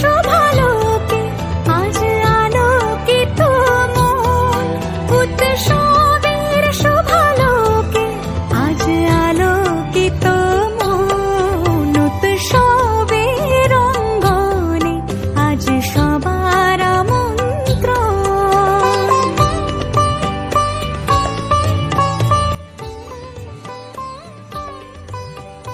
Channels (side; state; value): both; identical; correlation 1.00